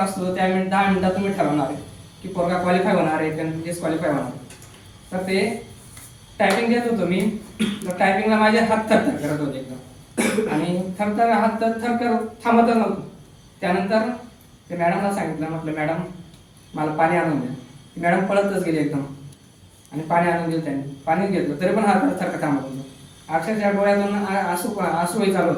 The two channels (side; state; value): both; identical; correlation 1.00